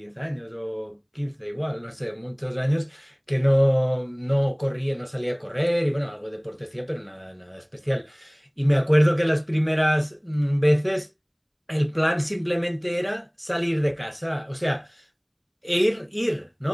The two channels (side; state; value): both; identical; correlation 1.00